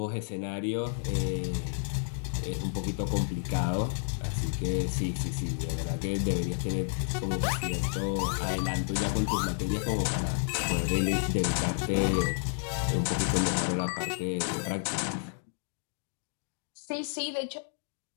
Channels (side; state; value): right; silent; digital silence